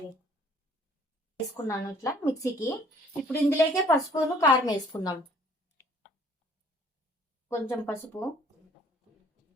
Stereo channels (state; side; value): normal; both; correlation 0.58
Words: వేసుకున్నాను ఇట్లా మిక్సీకి. ఇప్పుడు ఇందులోకే పసుపును కారం వేసుకుందాం. కొంచెం పసుపు,